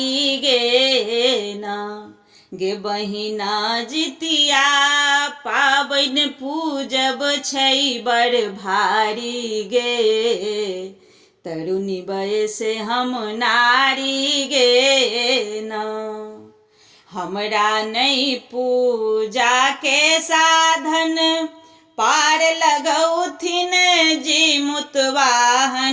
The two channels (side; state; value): both; identical; correlation 1.00